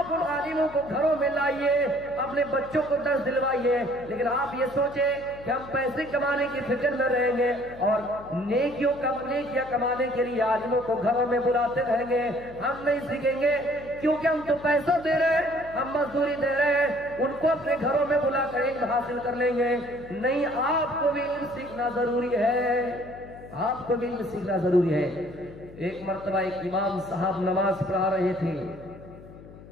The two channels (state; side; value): noise; left; hum, 18 dB below the sound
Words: उन आलिमों को घरों में लाइए, अपने बच्चों को दर्स दिलवाइए। लेकिन आप ये सोचें कि हम पैसे कमाने की फिक्र में रहेंगे और नेकियां कमाने के लिए आलिमों को घरों में बुलाते रहेंगे, हम नहीं सीखेंगे। क्योंकि हम तो पैसा दे रहे हैं, हम मजदूरी दे रहे हैं, उनको अपने घरों में बुला कर इल्म हासिल कर लेंगे। नहीं, आपको भी इल्म सीखना जरूरी है, आपको भी इल्म सीखना जरूरी है। एक मर्तबा एक इमाम साहब नमाज पढ़ा रहे थे,